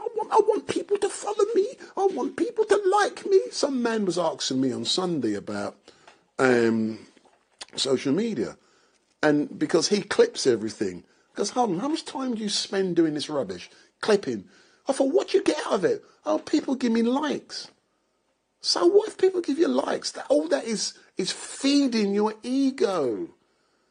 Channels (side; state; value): both; identical; correlation 1.00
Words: I want people to follow me. I want people to like me. Some man was asking me on Sunday about social media. And because he clips everything. Because, hold on, how much time do you spend doing this rubbish? Clipping. I thought, what do you get out of it? Oh, people give me likes. So what if people give you likes? All that is feeding your ego.